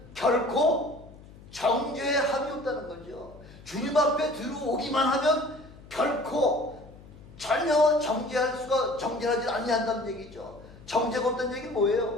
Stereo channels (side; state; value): left; noise; hum, 20 dB below the sound